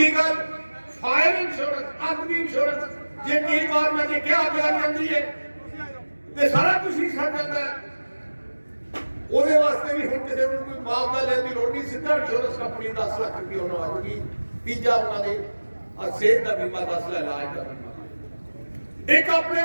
ਗੱਲ ਫਾਇਰ ਇੰਸ਼ੋਰੈਂਸ ਅੱਗ ਦੀ ਇੰਸ਼ੋਰੈਂਸ ਜੇ ਕਈ ਵਾਰ ਮੈਂ ਦੇਖਿਆ ਅੱਗ ਲੱਗ ਜਾਂਦੀ ਹੈ ਤੇ ਸਾਰਾ ਕੁਝ ਹੀ ਛੱਡ ਜਾਂਦਾ ਉਹਦੇ ਵਾਸਤੇ ਵੀ ਹੁਣ ਕਿਸੇ ਨੂੰ ਕੋਈ ਮੁਆਵਜ਼ਾ ਲੈਣ ਦੀ ਲੋੜ ਨਹੀਂ ਸਿੱਧਾ ਇੰਸ਼ੋਰੈਂਸ ਕੰਪਨੀ 10 ਲੱਖ ਰੁਪਏ ਉਹਨਾਂ ਆ ਜੂਗੀ ਤੀਜਾ ਉਹਨਾਂ ਦੇ ਸਿਹਤ ਦਾ ਬੀਮਾ 10 ਲੱਖ ਇਲਾਜ ਦਾ ਬੀਮਾ ਇੱਕ ਆਪਣੇ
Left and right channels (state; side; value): inverted; both; correlation -1.00